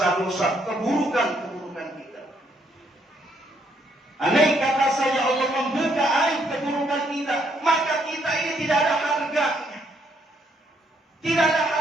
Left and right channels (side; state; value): both; normal; correlation 0.72